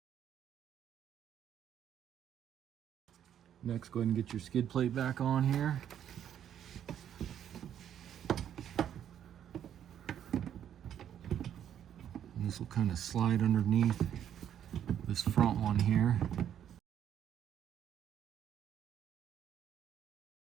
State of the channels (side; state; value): left; quieter; 9.8 dB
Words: Next, go ahead and get your skid plate back on here. And this will kind of slide underneath this front one here.